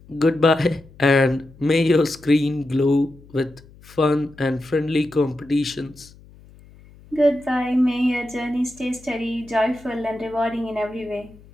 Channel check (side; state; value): left; noise; hum, 24 dB below the sound